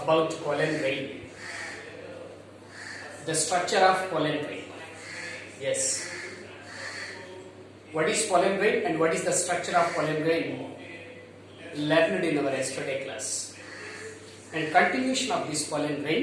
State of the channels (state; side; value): identical; both; correlation 1.00